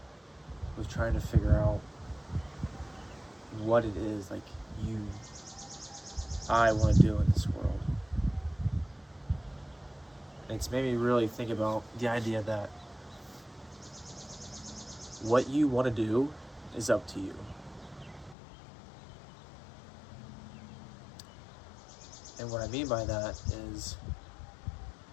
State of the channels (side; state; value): right; drops out; at 18.4 s